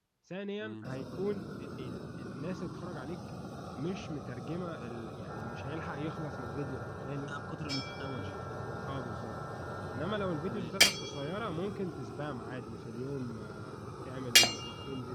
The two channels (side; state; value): both; identical; correlation 1.00